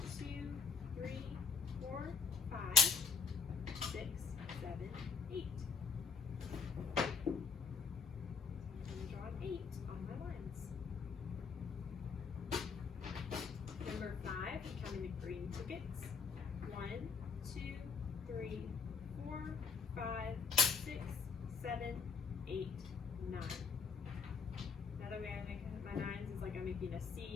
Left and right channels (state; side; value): quieter; right; 5.4 dB